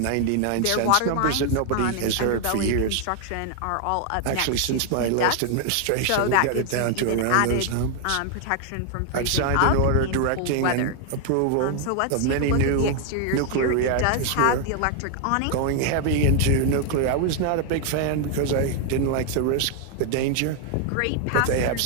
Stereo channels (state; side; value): different; both; correlation 0.00